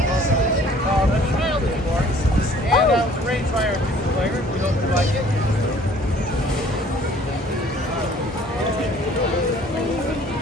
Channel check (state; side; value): normal; both; correlation 0.55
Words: Called A Child is Born. And it was arranged by our two players. We hope you like it.